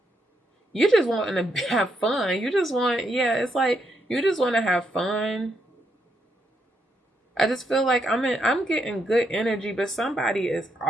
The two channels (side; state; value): both; normal; correlation 0.78